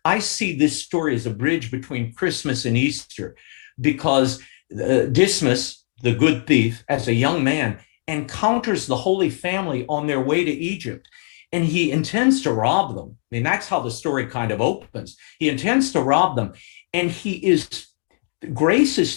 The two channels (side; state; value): right; silent; 59 dB below the other